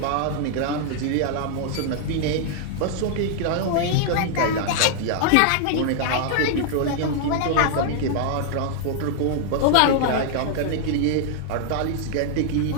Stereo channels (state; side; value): different; both; correlation -0.01